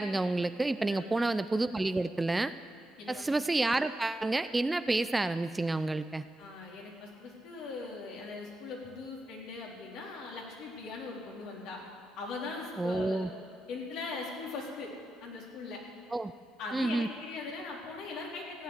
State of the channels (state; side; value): normal; both; correlation 0.89